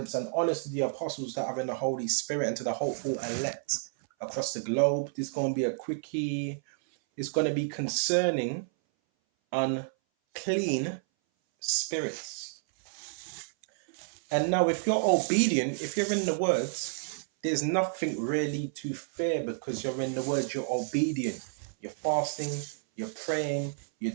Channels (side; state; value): left; silent; 58 dB below the other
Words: and honors to the apostles that are in the Holy Spirit and to the hopeful elect across the globe. This is going to be a quickie. It's going to be concerning unclean spirits. And now, if you're obedient, if you're in the words, there's nothing really to fear because you're in the words, you're obedient. You're fasting, you're praying,